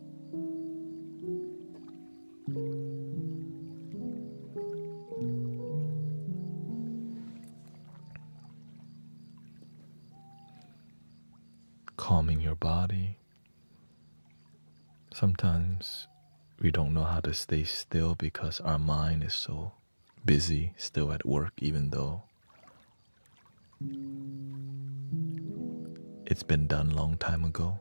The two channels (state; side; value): inverted; both; correlation -1.00